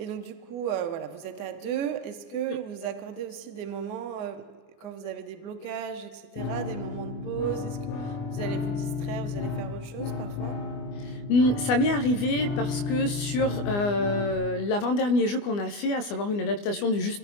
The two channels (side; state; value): right; late; 24 ms